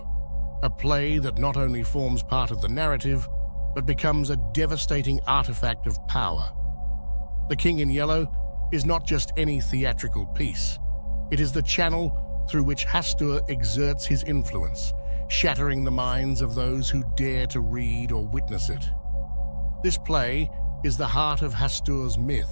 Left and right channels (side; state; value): both; inverted; correlation -1.00